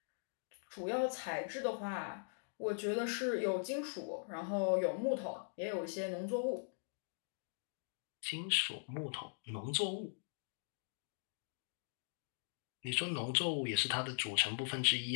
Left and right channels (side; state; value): right; silent; digital silence